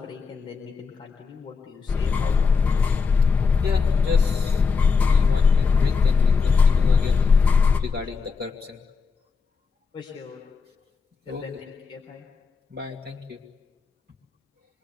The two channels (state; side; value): quieter; right; 5.1 dB